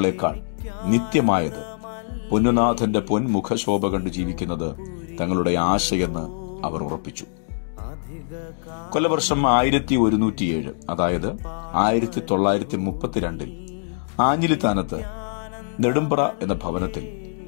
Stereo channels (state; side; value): silent; right; digital silence